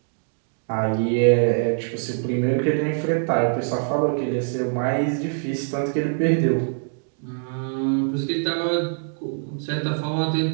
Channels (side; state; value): left; silent; digital silence